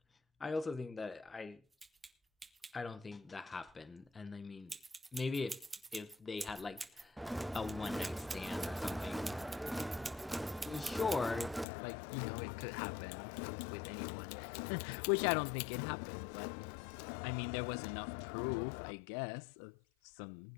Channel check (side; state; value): right; drops out; at 11.7 s